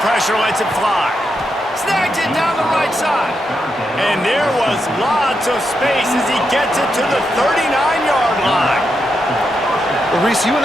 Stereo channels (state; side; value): normal; both; correlation 0.84